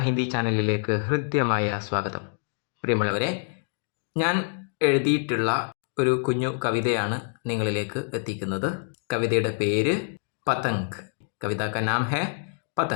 ഹിന്ദി ചാനലിലേക്ക് ഹൃദ്യമായ സ്വാഗതം. പ്രിയമുള്ളവരെ, ഞാൻ എഴുതിയിട്ടുള്ള ഒരു കുഞ്ഞു കവിതയാണ് നിങ്ങളിലേക്ക് എത്തിക്കുന്നത്. കവിതയുടെ പേര് പതംഗ്. കവിത കാ നാം ഹേ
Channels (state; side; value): silent; right; 56 dB below the other